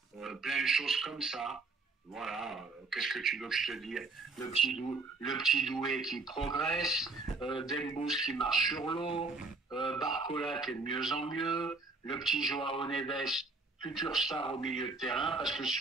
Plein de choses comme ça. Voilà, qu'est-ce que tu veux que je te dise? Le petit Doué qui progresse, Dembouz qui marche sur l'eau, Barcola qui est de mieux en mieux, le petit Joao Neves, futur star au milieu de terrain, parce que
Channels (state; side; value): quieter; left; 3.8 dB